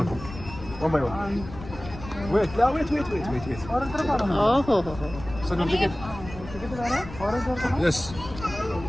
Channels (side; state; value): left; noise; rumble, 13 dB below the sound